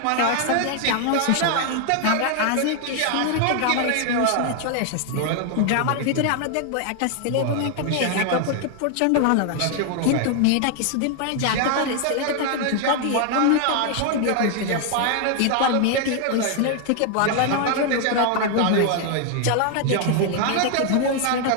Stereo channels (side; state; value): both; different; correlation 0.00